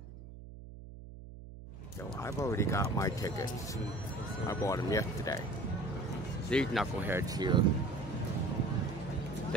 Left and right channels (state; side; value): noise; right; hum, 14 dB below the sound